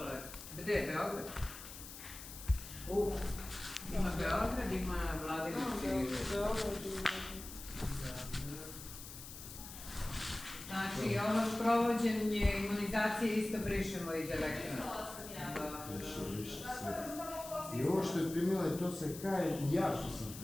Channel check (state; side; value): noise; left; hiss, 12 dB below the sound